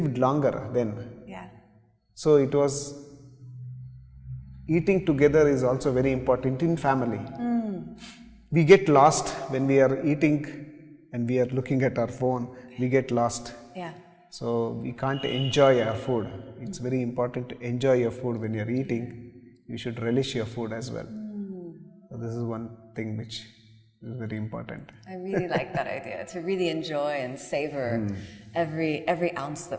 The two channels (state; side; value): identical; both; correlation 1.00